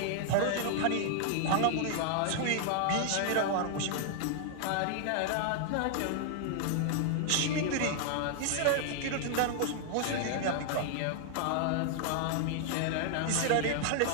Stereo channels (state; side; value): different; both; correlation -0.01